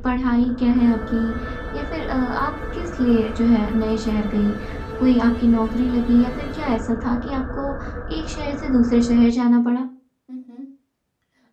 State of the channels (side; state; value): both; identical; correlation 1.00